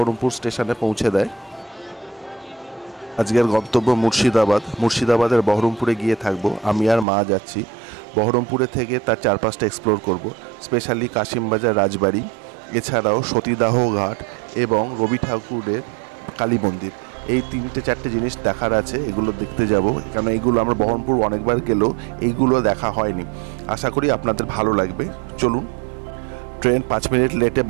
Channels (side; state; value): left; drops out; at 7.1 s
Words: স্টেশনে পৌঁছে দেয়। আজকের গন্তব্য মুর্শিদাবাদের বহরমপুরে গিয়ে থাকবো। আমি আর মা যাচ্ছি। বহরমপুরে থেকে তার চারপাশটা এক্সপ্লোর করব, স্পেশালি কাশিমবাজার রাজবাড়ি, এছাড়াও সতীদাহ ঘাট এবং রবি ঠাকুরের কালী মন্দির। এই 3-4টে জিনিস দেখার আছে, এগুলো দেখতে যাব। কারণ এইগুলো আমরা বহরমপুর অনেকবার গেলেও এইগুলো দেখা হয়নি। আশা করি আপনাদের ভালো লাগবে। চলুন। ট্রেন 5 মিনিট লেটে